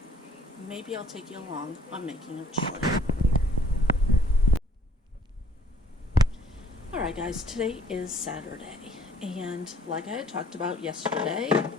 Maybe I'll take you along on making a chili. Alright guys, today is Saturday, and like I had talked about yesterday,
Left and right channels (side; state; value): both; normal; correlation 0.58